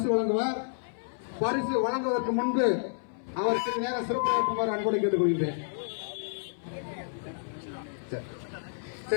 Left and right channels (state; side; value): silent; right; 58 dB below the other